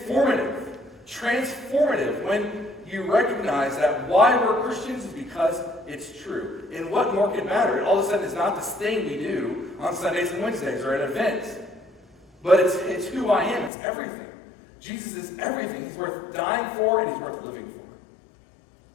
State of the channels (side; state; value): right; drops out; at 13.7 s